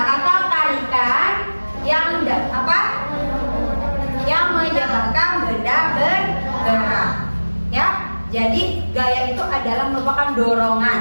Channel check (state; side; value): inverted; both; correlation -1.00